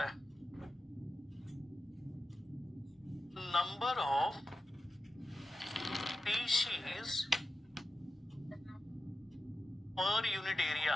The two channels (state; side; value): normal; both; correlation 0.92